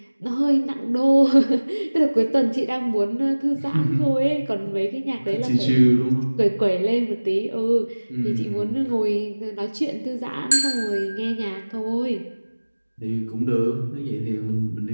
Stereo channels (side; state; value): both; inverted; correlation -1.00